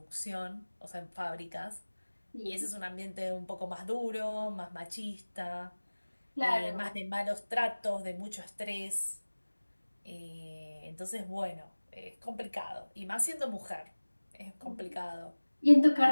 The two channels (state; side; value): inverted; both; correlation -1.00